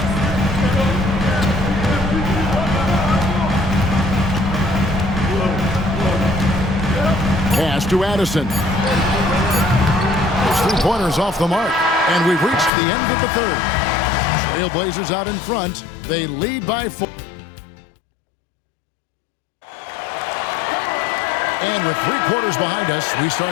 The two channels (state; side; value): drops out; right; at 12.7 s